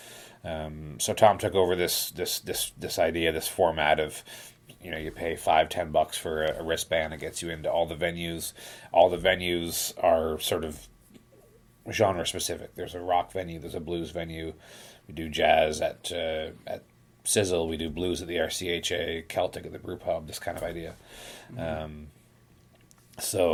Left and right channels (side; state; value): both; identical; correlation 1.00